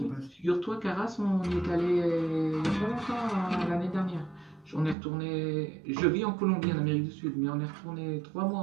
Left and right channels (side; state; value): left; drops out; at 5.0 s